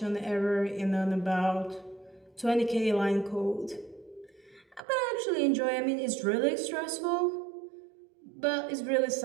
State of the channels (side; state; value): left; drops out; at 4.8 s